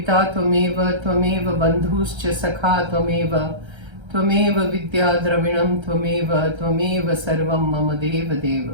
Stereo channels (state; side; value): late; left; 1.3 ms